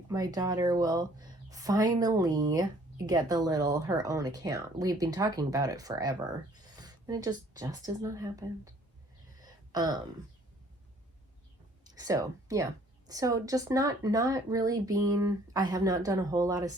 my daughter will finally get her own account. We've been talking about it forever, and it just has not happened. So yeah, so just not really being, I have not done a whole lot of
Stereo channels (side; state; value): both; normal; correlation 0.58